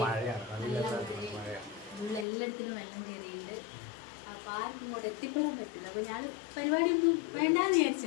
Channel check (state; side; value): drops out; right; at 2.2 s